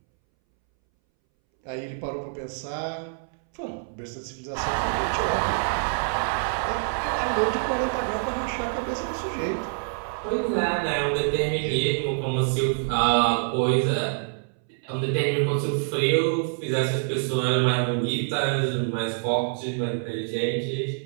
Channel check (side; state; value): left; silent; 61 dB below the other